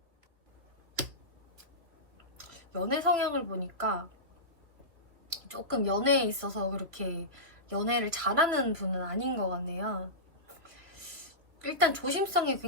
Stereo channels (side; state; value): left; late; 2.9 ms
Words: 연애 성향을 보니까 조금 연애에 있어서 그렇게 연애를 잘하는 분은 아닌 것 같네요. 일단 조심성이